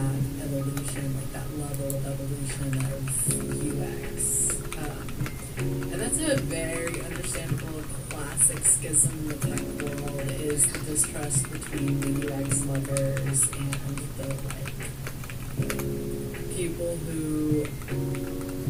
evolution, like that level of evolution of UX. And that's a very understandable classic schism in the tech world, is the distrust between the UX lovers and the like people who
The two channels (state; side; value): identical; both; correlation 1.00